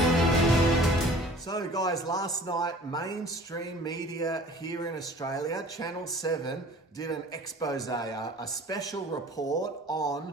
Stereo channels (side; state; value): both; normal; correlation 0.47